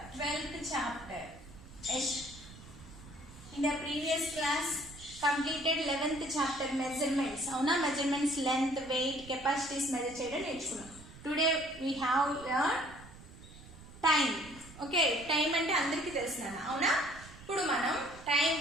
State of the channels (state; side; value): noise; right; rumble, 18 dB below the sound